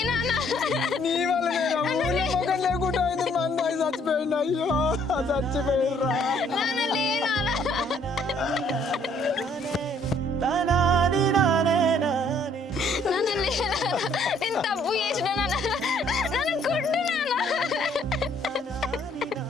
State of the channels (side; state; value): both; normal; correlation 0.63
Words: నీ వల్ల నేను లేకుండా అయింది. మా అమ్మాయి చచ్చిపోయింది. అయ్యో చచ్చిపోయిర్రా. నేను తప్పు చేసిన నన్ను కొట్టు నాన్న.